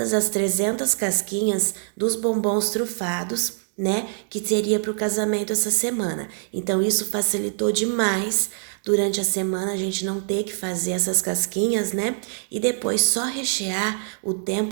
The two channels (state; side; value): silent; left; digital silence